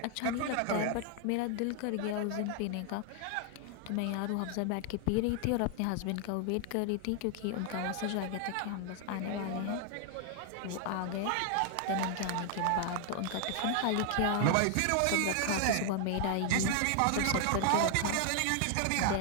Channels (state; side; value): different; both; correlation 0.00